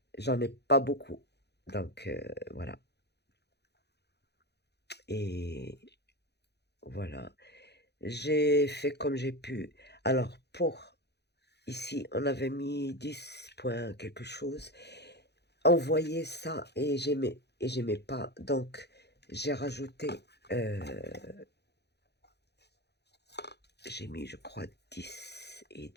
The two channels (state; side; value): late; right; 0.49 ms